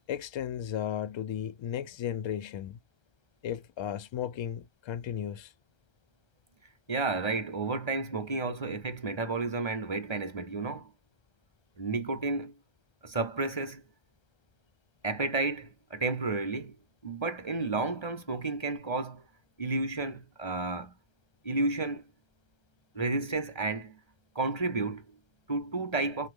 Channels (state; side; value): late; right; 1.3 ms